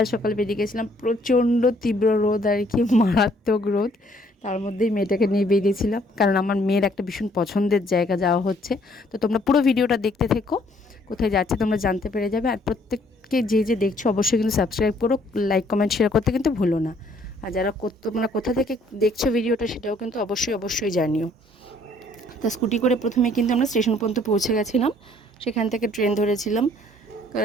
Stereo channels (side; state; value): both; normal; correlation 0.63